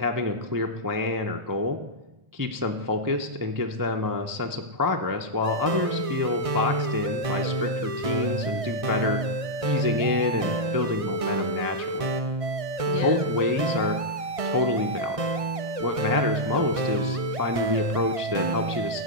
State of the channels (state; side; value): late; left; 1.6 ms